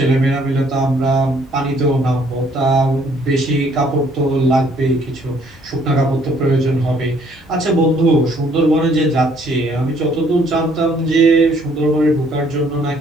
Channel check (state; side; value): normal; both; correlation 0.63